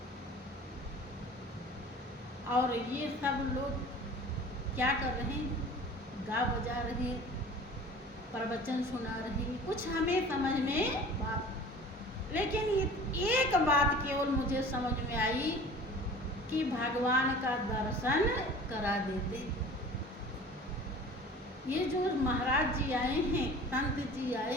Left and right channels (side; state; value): both; normal; correlation 0.43